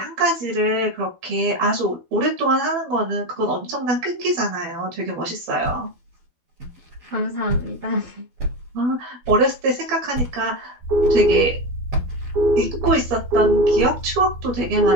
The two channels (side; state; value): left; late; 12 ms